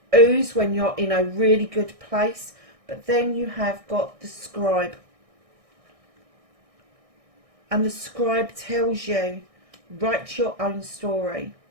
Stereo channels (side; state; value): left; late; 1.6 ms